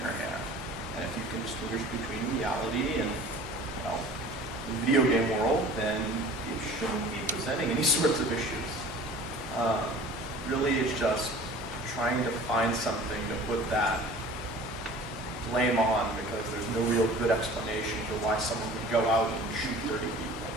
hand. And if you can distinguish between reality and, well, the video game world, then it shouldn't be presenting any sorts of issues. Really, it's just trying to find something to put that blame on because there's no real good explanation for why someone would go out and shoot 30 people.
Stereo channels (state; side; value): normal; both; correlation 0.44